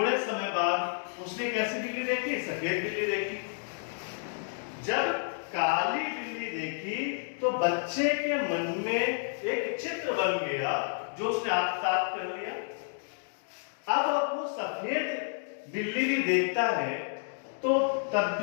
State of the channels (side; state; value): right; silent; digital silence